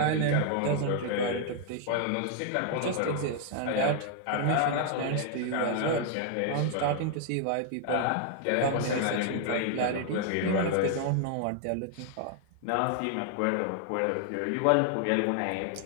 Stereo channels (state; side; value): different; both; correlation 0.00